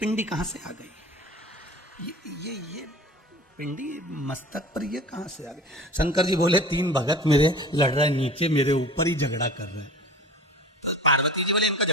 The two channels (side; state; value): both; normal; correlation 0.39